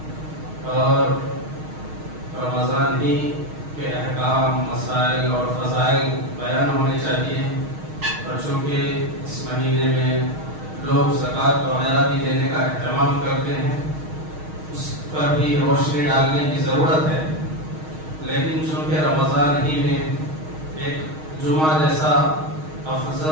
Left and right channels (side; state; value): left; late; 6.4 ms